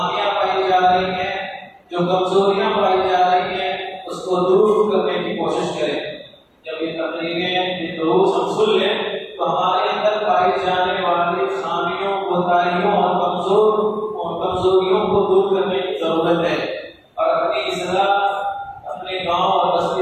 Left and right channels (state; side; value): identical; both; correlation 1.00